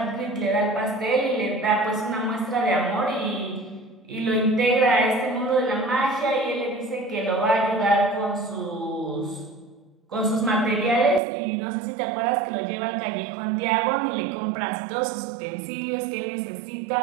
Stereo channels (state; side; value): drops out; left; at 11.2 s